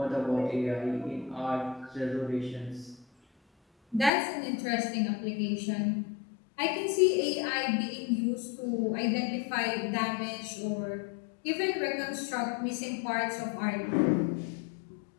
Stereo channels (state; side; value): drops out; right; at 4.1 s